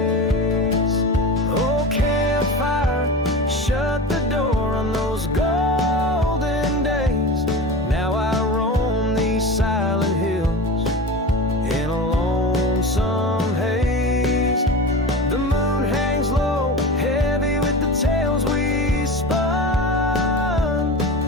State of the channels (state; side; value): normal; both; correlation 0.29